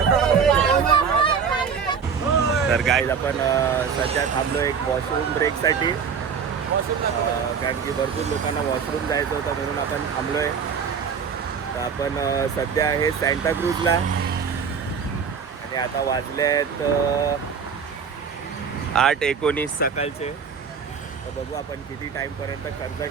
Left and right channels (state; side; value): quieter; left; 6.5 dB